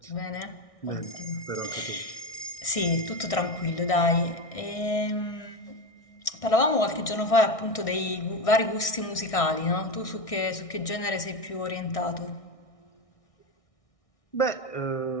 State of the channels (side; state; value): right; late; 1.6 ms